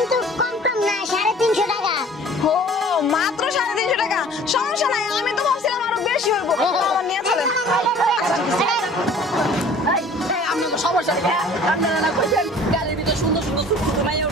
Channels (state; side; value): normal; both; correlation 0.49